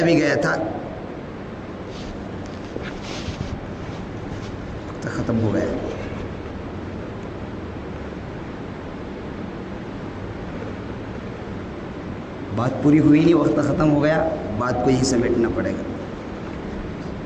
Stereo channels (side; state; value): both; identical; correlation 1.00